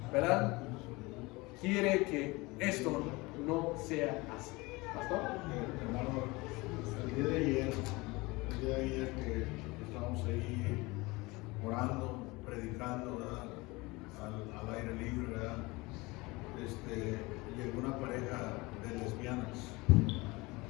¿verdad?, quiere que esto no sea así. ¿Pastor? Hermano, el día de ayer que estábamos ahí orando, predicando, ¿verdad?, al aire libre, ¿verdad?, llegó una pareja de lesbianas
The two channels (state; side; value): quieter; right; 23.3 dB